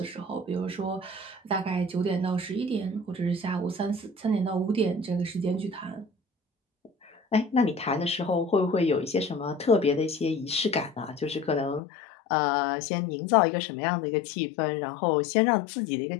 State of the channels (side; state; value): right; drops out; at 11.8 s